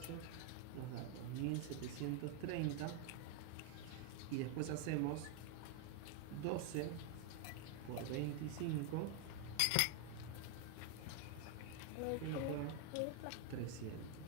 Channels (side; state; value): both; different; correlation 0.01